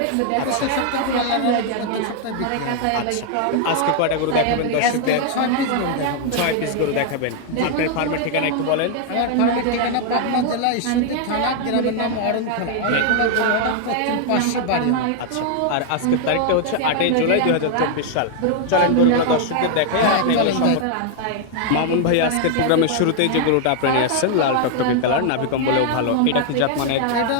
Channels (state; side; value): different; both; correlation 0.00